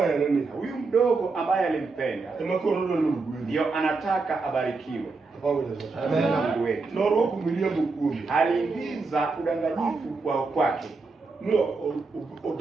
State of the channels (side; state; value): left; quieter; 4.1 dB